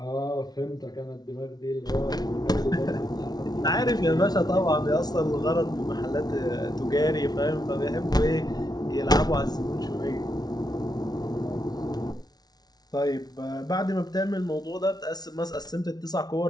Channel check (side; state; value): right; late; 0.19 ms